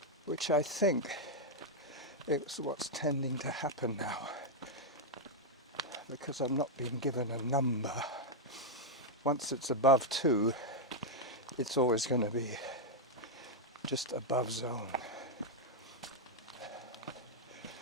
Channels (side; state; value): both; normal; correlation -0.02